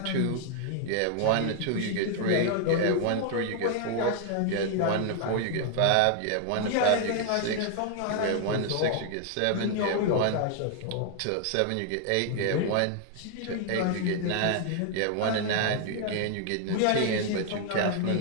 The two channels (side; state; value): both; different; correlation 0.00